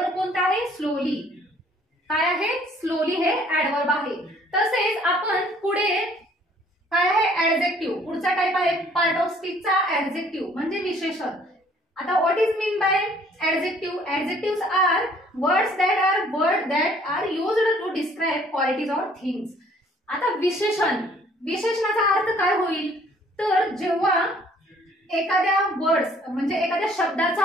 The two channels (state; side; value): normal; both; correlation 0.59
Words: कोणता आहे? स्लोली. काय आहे? स्लोली हे ऍडवर्ब आहे. तसेच आपण पुढे काय आहे ऍडजेक्टिव्ह. पुढचा टाइप आहे पार्ट ऑफ स्पीचचा ऍडजेक्टिव्ह म्हणजे विशेषण. आता what is mean by adjective. Adjectives are words that are used to describe qualities or things. आता विशेषण, विशेषणाचा अर्थ काय होईल तर जेव्हा एखाद्या वर्ड्स म्हणजे एखाद्या